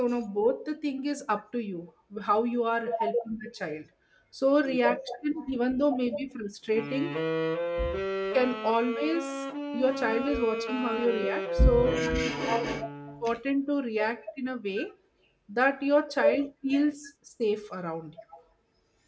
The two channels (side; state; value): both; identical; correlation 1.00